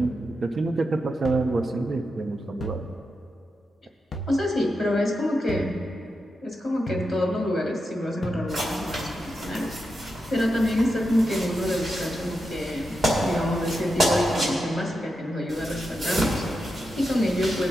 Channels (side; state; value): both; normal; correlation 0.87